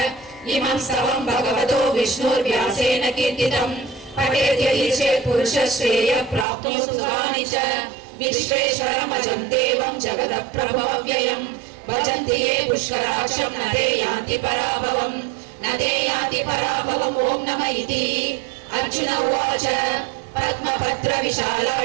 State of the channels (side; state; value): left; drops out; at 6.5 s